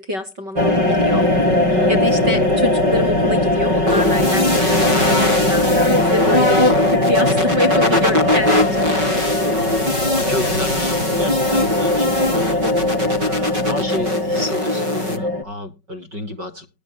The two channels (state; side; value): late; left; 5.3 ms